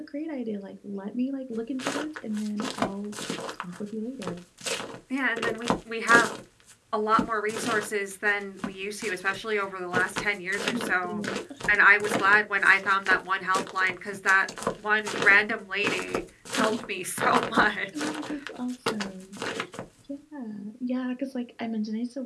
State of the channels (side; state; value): both; identical; correlation 1.00